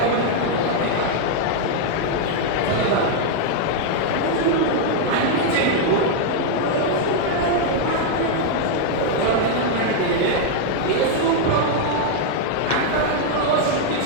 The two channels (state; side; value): different; both; correlation 0.00